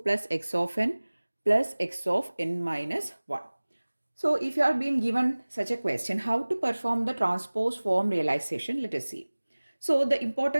x of n plus x of n minus 1. So if you are being given such a question, how to perform the transpose form realization, let us see. So the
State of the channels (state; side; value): inverted; both; correlation -1.00